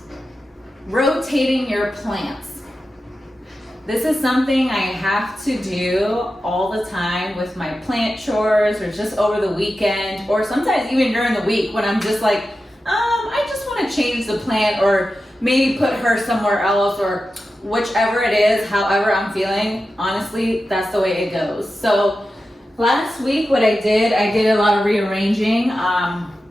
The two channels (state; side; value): normal; both; correlation 0.92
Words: Rotating your plants. This is something I have to do all the time with my plant chores, or just over the weekend, or sometimes even during the week when I'm just like, I just want to change the plant, or maybe put her somewhere else, or whichever it is, however I'm feeling. Honestly, that's the way it goes. So last week what I did a lot of rearranging.